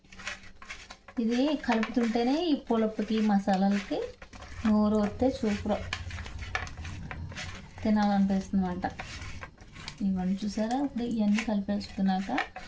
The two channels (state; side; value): identical; both; correlation 1.00